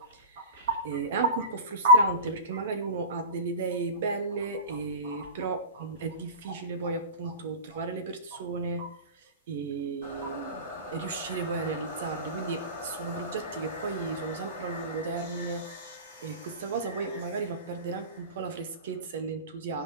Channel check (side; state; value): both; inverted; correlation -0.30